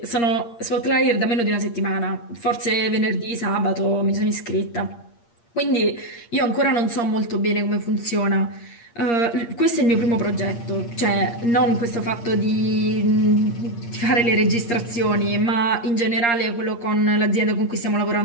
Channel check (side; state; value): right; late; 8.6 ms